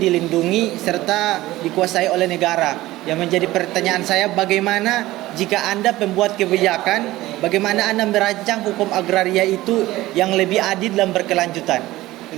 serta dikuasai oleh negara. Yang menjadi pertanyaan saya, bagaimana jika Anda pembuat kebijakan, bagaimana Anda merancang hukum agraria itu yang lebih adil dan berkelanjutan?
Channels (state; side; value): quieter; left; 17.2 dB